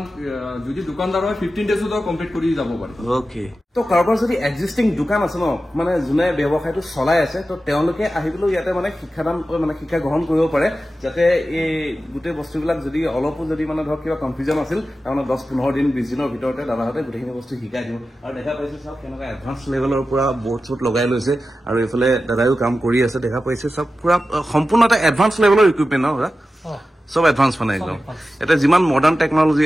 যদি দোকানদাৰ হয় 15 ডেজতো কমপ্লিট কৰি যাব পাৰে। ওকে, তো কাৰোবাৰ যদি এক্সিষ্টিং দোকান আছে ন, মানে যোনে ব্যৱসায়টো চলাই আছে, তো তেওঁলোকে আহিবলৈ ইয়াতে মানে শিক্ষা গ্ৰহণ কৰিব পাৰে, যাতে এই গোটেই বস্তুবিলাক যদি অলপো যদি মানে ধৰক কিবা কনফিউজন আছিল, তাৰমানে 10-15 দিন 20 দিনৰ ভিতৰতে দাদাহঁতে গোটেইখিনি বস্তু শিকাই দিব। আৰু দেখা পাইছে চাওক কেনেকুৱা এডভান্স লেভেলৰ পৰা বৰ্ড চৰ্ট লগাই লৈছে, আৰু এইফালে দাদাইও কাম কৰি আছে। দেখা পাইছে চব পুৰা সম্পূৰ্ণ এটা এডভান্স লেভেলৰ ইকুইপমেণ্ট ন? চব এডভান্স মানে একদম এটা যিমান মডাৰ্ণ টেকনলজি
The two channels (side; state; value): both; normal; correlation 0.93